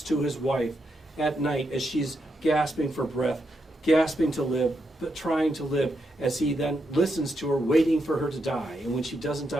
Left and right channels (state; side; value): normal; both; correlation 0.82